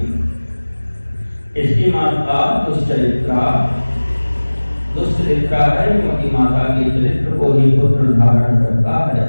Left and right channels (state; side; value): inverted; both; correlation -1.00